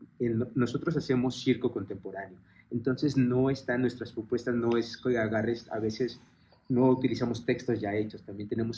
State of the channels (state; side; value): identical; both; correlation 1.00